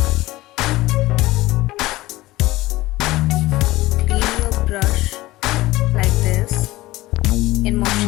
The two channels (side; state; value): right; quieter; 18.3 dB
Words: clean your brush like this in